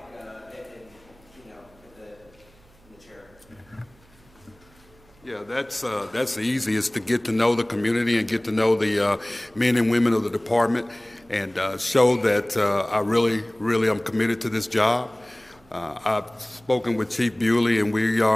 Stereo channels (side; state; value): right; noise; hum, 29 dB below the sound